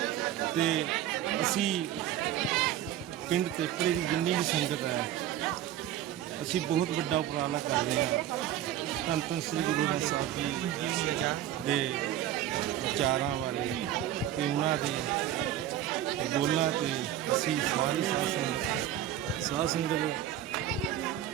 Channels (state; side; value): quieter; left; 11.8 dB